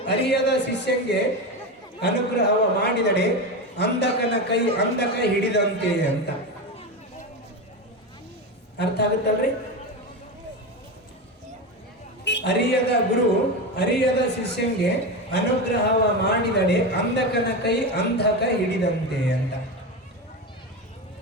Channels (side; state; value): both; normal; correlation 0.19